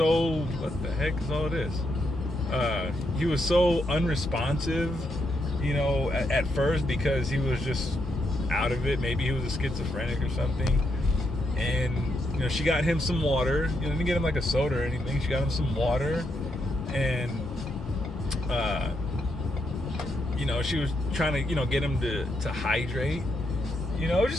what the heck is all this? He was so unresponsive, you know, at first, because he was just out of it. Maybe he was a schizophrenic or something. And, you know, she got him some water. You know, didn't get him like a soda or anything. She got him some water, and you know, she was trying to, you know, get him to hydrate. You know,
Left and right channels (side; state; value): both; normal; correlation 0.80